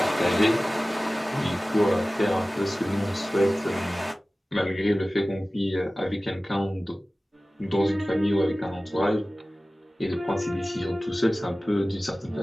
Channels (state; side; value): normal; both; correlation 0.97